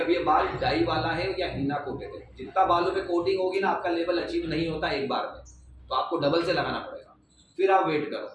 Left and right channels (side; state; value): both; identical; correlation 1.00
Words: अब ये बाल डाई वाला है या हिना कोटेड है, जितना बालों पे कोटिंग होगी ना आपका लेवल अचीव नहीं होता एक बार में। तो आपको डबल से लगाना पड़ेगा, फिर आप वेट करो,